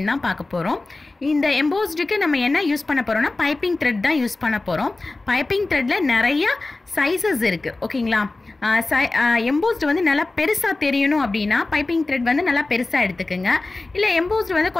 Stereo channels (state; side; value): quieter; right; 3.2 dB